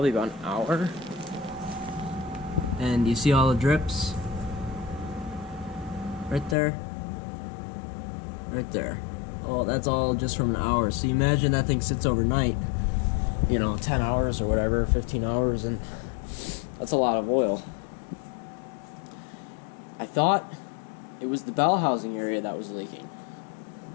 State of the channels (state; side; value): drops out; right; at 6.6 s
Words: about an hour. And you see all the drips? Right there. Right there. Oh, that's all just from an hour. So you imagine that thing sits overnight, 10 hours or whatever, 15 hours, and that's a lot of oil. I thought it was the bell housing area that was leaking.